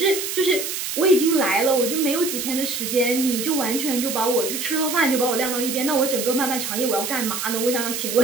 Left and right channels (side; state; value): right; noise; hiss, 4 dB below the sound